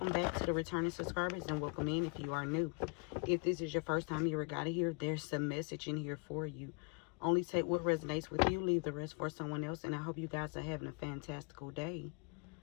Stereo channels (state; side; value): quieter; right; 33.9 dB